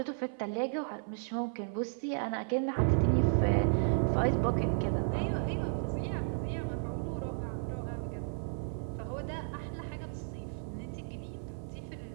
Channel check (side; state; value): left; silent; 55 dB below the other